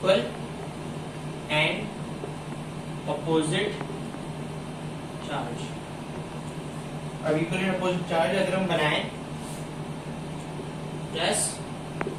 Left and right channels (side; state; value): both; identical; correlation 1.00